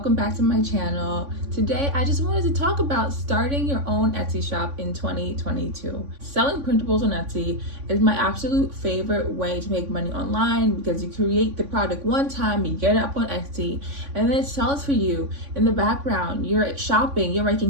back to my channel. Today, I just wanted to talk about starting your own Etsy shop in 2022. Selling printables on Etsy is my absolute favorite way to make money online because you create the product one time, you get it up on Etsy, and then it sells for you in the background. You're shopping, you're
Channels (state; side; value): late; left; 3.5 ms